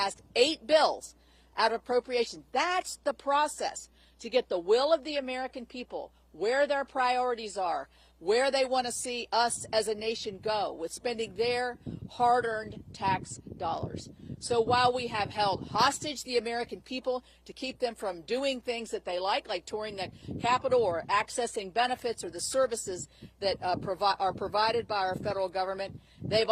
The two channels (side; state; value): both; identical; correlation 1.00